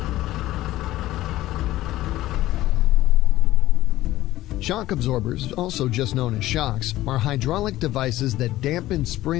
Shock absorbers, also just known as shocks, are hydraulic devices that dampen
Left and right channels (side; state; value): right; quieter; 15.7 dB